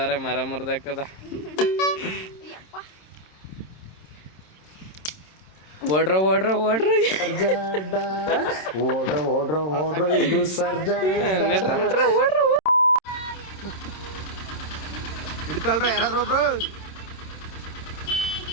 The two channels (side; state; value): right; late; 27 ms